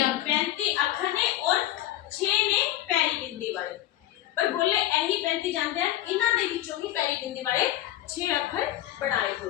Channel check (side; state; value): right; quieter; 13.9 dB